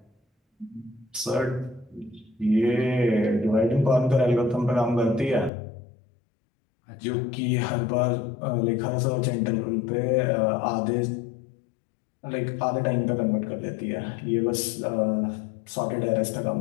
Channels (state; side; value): drops out; right; at 5.5 s